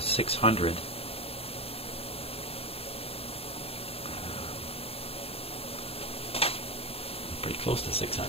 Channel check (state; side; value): late; right; 0.28 ms